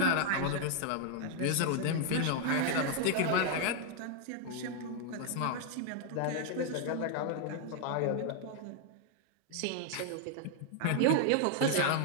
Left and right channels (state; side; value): different; both; correlation 0.00